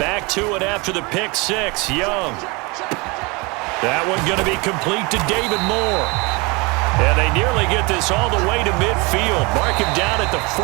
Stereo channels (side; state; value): left; quieter; 27.2 dB